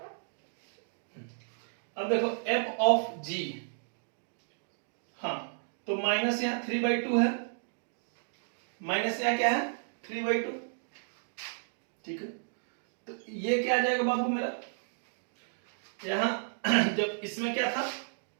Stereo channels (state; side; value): silent; left; digital silence